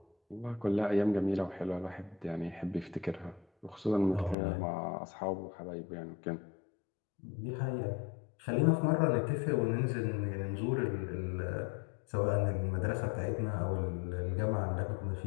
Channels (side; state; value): right; drops out; at 4.4 s